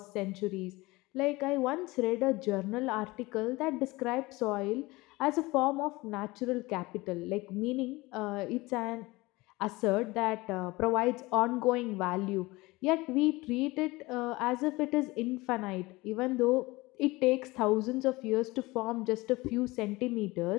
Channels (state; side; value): quieter; right; 21.7 dB